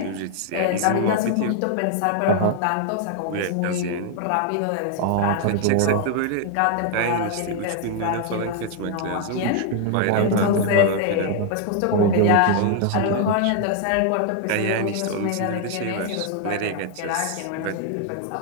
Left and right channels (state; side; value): different; both; correlation 0.00